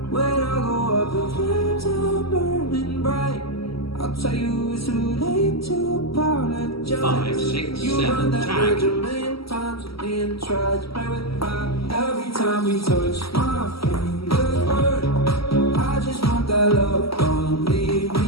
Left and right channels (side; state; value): right; late; 0.75 ms